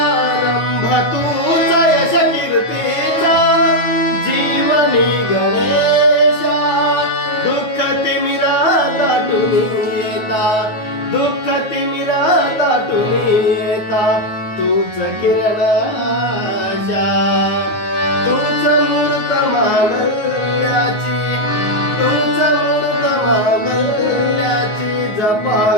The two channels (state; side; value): late; right; 9.5 ms